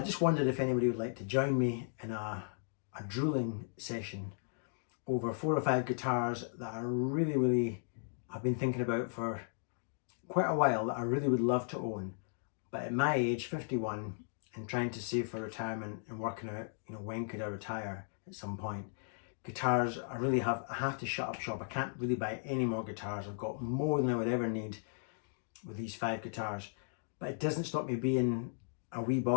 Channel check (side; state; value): right; silent; digital silence